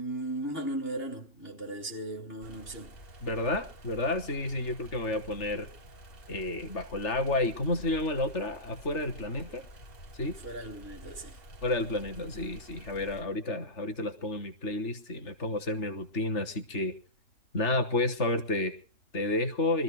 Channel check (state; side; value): late; right; 3.3 ms